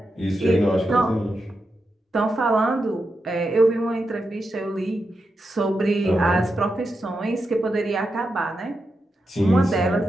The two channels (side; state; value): both; normal; correlation 0.87